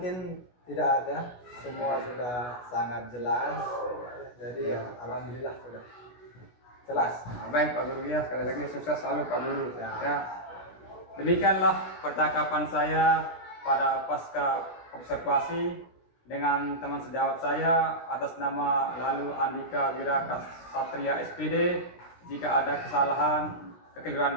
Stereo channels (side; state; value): right; late; 16 ms